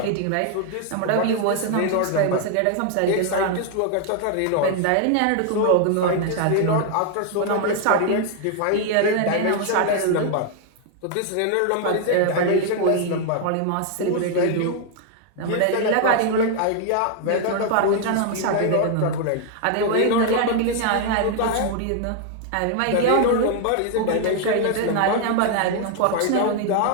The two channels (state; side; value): different; both; correlation 0.00